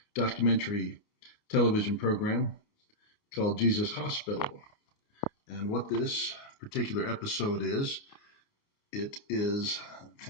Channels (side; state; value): right; late; 28 ms